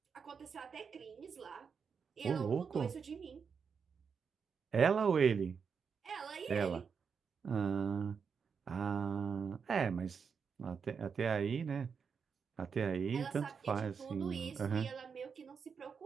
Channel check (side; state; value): left; quieter; 6.1 dB